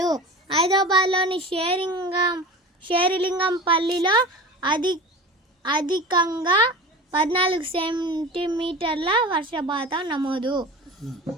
హైదరాబాద్లోని షేరిలింగంపల్లిలో అధికంగా 14 సెంటీమీటర్ల వర్షపాతం నమోదు.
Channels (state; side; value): normal; both; correlation 0.34